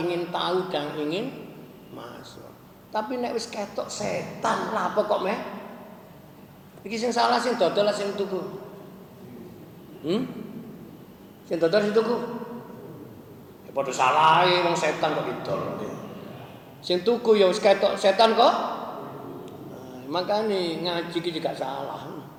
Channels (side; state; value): both; identical; correlation 1.00